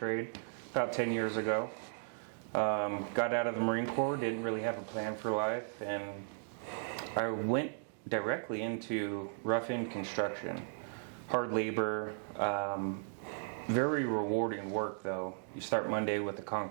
about 10 years ago. Got out of the Marine Corps, didn't really have a plan for life, and I went directly into rough-in construction. Hard labor, very rewarding work though. You start Monday with a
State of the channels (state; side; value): silent; left; digital silence